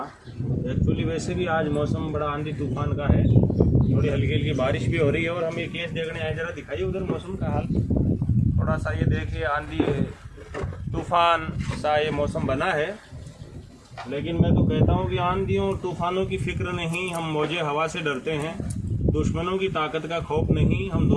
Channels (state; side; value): identical; both; correlation 1.00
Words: एक्चुअली वैसे भी आज मौसम बड़ा आंधी तूफान का है, थोड़ी हल्की हल्की बारिश भी हो रही है और हम ये केस देखने आए। जरा दिखाइए उधर मौसम का हाल, थोड़ा सा ये देखिए आंधी तूफान सा ये मौसम बना है। लेकिन मैं तो कहता हूँ कि आंधियों और तूफानों की फिक्र नहीं, हम मौजे हवा से डरते हैं। दुश्मनों की ताकत का खौफ नहीं, हम